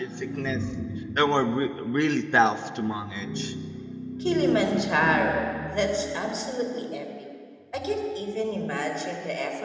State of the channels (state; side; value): identical; both; correlation 1.00